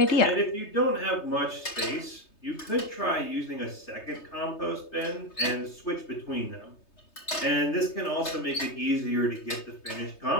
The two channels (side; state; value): right; late; 3.3 ms